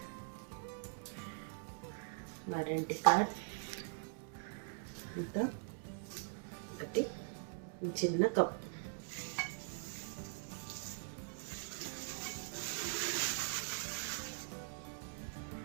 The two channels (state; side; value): silent; left; digital silence